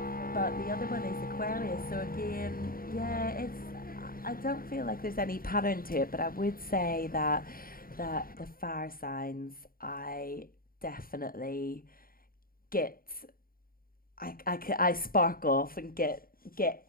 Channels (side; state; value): right; late; 0.42 ms